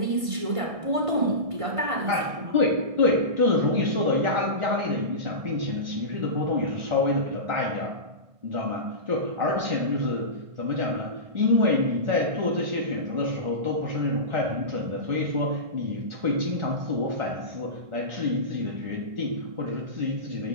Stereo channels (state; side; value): late; left; 1.5 ms